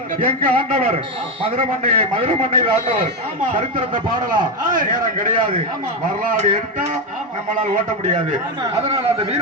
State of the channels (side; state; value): both; normal; correlation 0.10